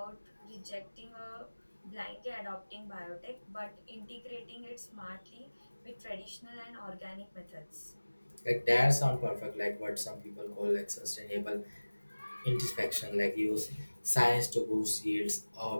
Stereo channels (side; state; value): both; inverted; correlation -1.00